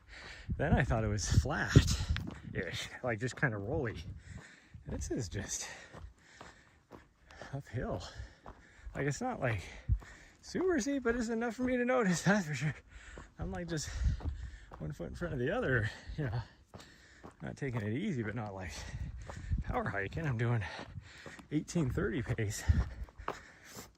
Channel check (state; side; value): identical; both; correlation 1.00